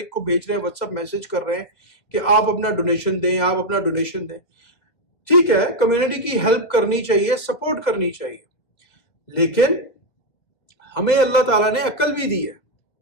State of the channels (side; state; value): right; late; 2.0 ms